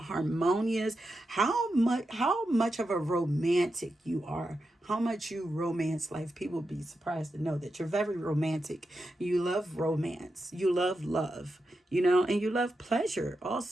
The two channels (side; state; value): both; normal; correlation 0.88